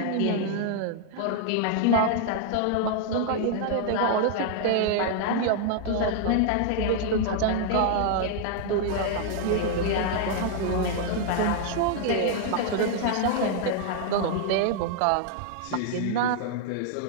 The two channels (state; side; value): different; both; correlation -0.01